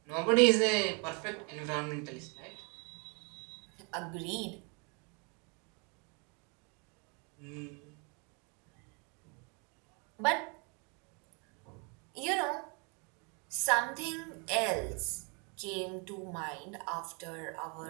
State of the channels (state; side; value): quieter; left; 34.0 dB